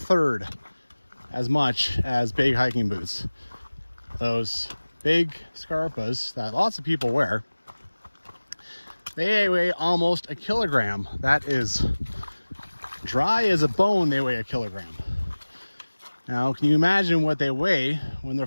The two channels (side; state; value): both; inverted; correlation -1.00